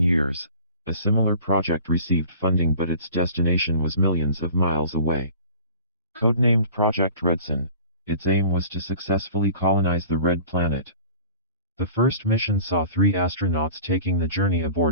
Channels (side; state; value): both; inverted; correlation -0.43